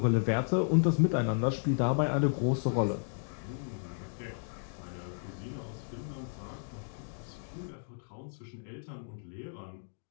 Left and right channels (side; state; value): right; silent; digital silence